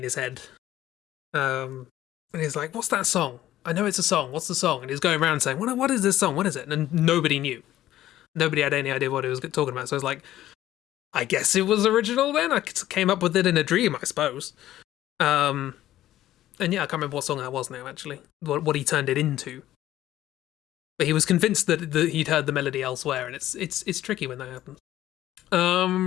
his head. And he's like, what's that song? I know it's a song. What's the song? And he's going around saying, what is this song? What is it? And nobody knew. Nobody had any idea what he was talking about. So I was like, I guess it was original then. I came up with it in a dream, I suppose. And yeah, I can't remember what song that was now, actually. What he turned it into. But he was convinced that he'd heard the melody elsewhere, and it's tricky when that happens.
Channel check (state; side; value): quieter; right; 13.6 dB